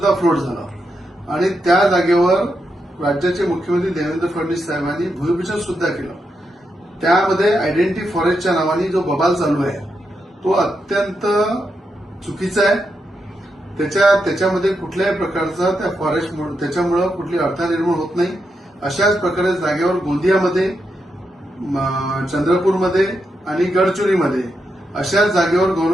फ्लोट झालं आणि त्या जागेवर राज्याचे मुख्यमंत्री देवेंद्र फडणवीस साहेबांनी भूमिपूजन सुद्धा केलं. त्यामध्ये आयडेंटिटी फॉरेस्टच्या नावाने जो बबाल चालू आहे तो अत्यंत चुकीचा आहे. त्याच्यामध्ये कुठल्याही प्रकारचा त्या फॉरेस्ट त्याच्यामुळे कुठली अडथळा निर्माण होत नाही. अशाच प्रकारे जागेवर गोंदियामध्ये, चंद्रपूरमध्ये आणि गडचिरोलीमध्ये अशाच जागेवर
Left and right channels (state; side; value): normal; both; correlation 0.84